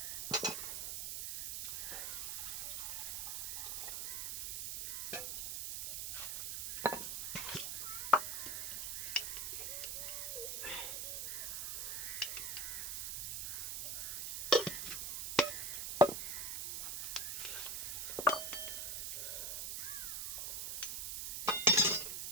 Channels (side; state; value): right; noise; hiss, 2 dB below the sound